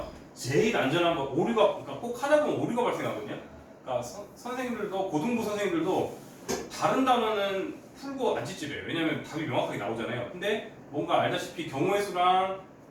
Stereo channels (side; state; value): both; identical; correlation 1.00